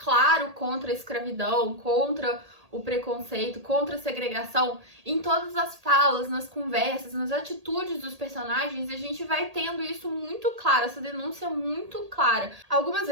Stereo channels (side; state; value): left; late; 1.8 ms